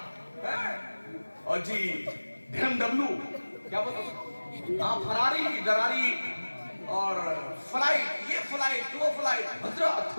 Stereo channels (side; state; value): both; inverted; correlation -1.00